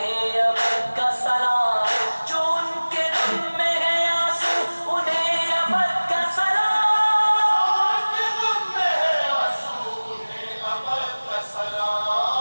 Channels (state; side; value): inverted; both; correlation -1.00